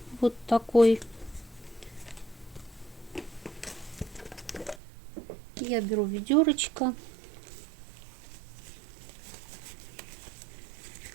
вот такой. Я беру ведерочко.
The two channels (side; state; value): left; drops out; at 4.8 s